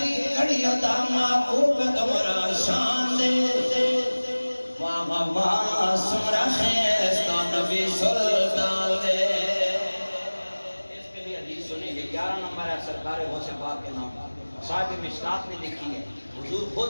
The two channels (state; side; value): inverted; both; correlation -1.00